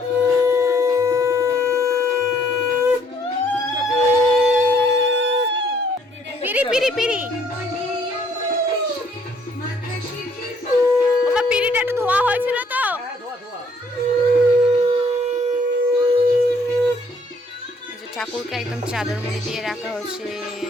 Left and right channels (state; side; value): normal; both; correlation 0.64